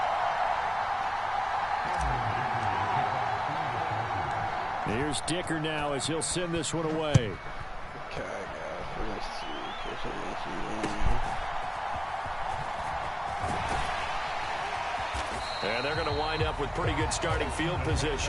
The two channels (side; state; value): both; identical; correlation 1.00